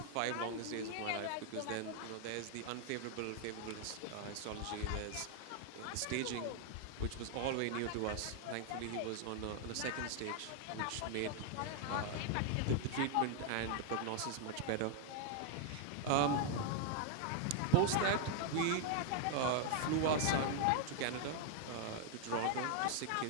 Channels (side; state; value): both; different; correlation 0.00